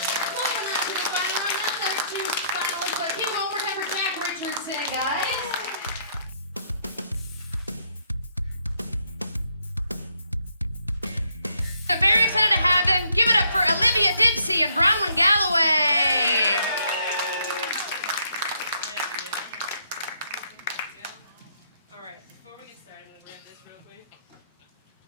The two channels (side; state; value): both; inverted; correlation -0.71